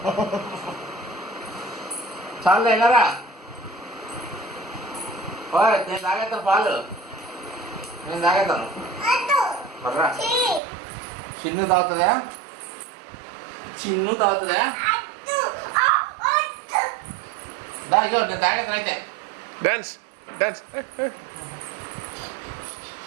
చాలే వెళ్ళరా. నేను తాగేస్తాను పాలు, నేను తాగేస్తాను. మర్రా చిన్ను తాగుతుందా? చిన్ను తాగుతుందా? ఇగో నేను తాగేస్తాను అయితే. Dance dance.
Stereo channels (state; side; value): drops out; left; at 10.6 s